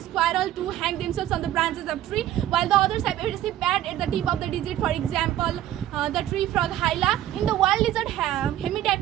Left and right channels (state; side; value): quieter; left; 12.7 dB